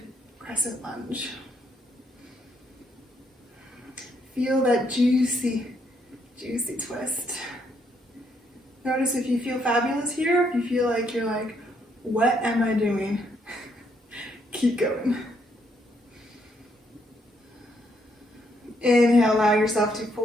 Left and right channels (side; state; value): both; normal; correlation 0.73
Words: crescent lunge. Feel that juicy, juicy twist. Notice if you feel fabulous here, if you feel like you're like, what am I doing? Keep going. Inhale, allow yourself to